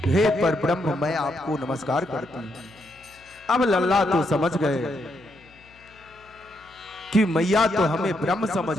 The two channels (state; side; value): noise; left; hum, 28 dB below the sound